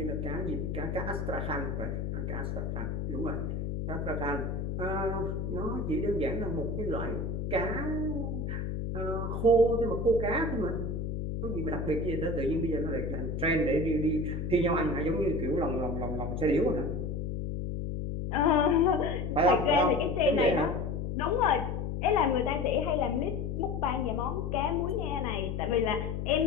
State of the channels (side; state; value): left; noise; hum, 3 dB below the sound